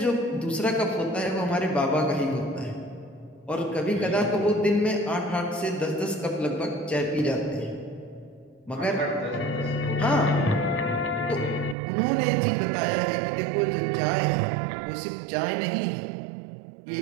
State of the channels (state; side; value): drops out; left; at 11.8 s